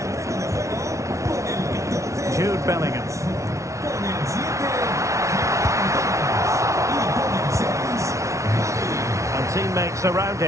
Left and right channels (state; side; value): late; left; 0.14 ms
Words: Jude Bellingham. And teammates around